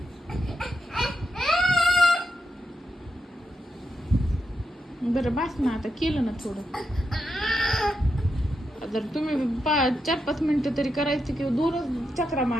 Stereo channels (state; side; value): normal; both; correlation 0.86